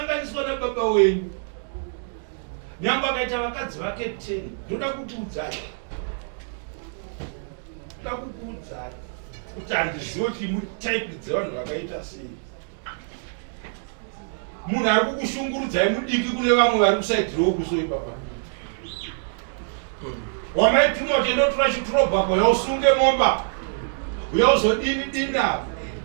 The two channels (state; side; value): silent; left; digital silence